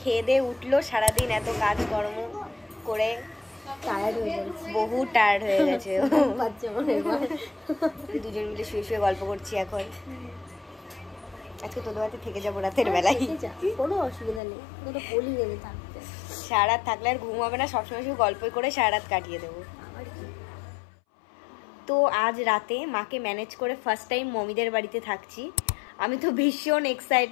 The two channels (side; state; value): right; drops out; at 14.4 s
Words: খেয়ে দিয়ে উঠলো। সারাদিন এত কাজকর্ম করে টায়ার্ড হয়ে গেছে, বহু টায়ার্ড হয়ে গেছে। দুজন মিলে শুয়ে শুয়ে গল্প করছি এখন। আজকে তোদের বাড়িতে থেকে যাবো রাতের বেলায়, কোনো অসুবিধা নেই। সারা রাত থাকলে আর ঘুম হবে না, সবসময় শুধু গল্প করে সারা রাত কাটিয়ে দেবো। তো আজ রাতে মাকে ম্যানেজ করে ফার্স্ট টাইম মমিদের বাড়িতে থাকছি। আমি তো ভীষণ